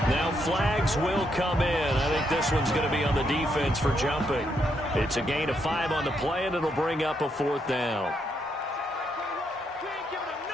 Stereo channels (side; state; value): both; normal; correlation 0.77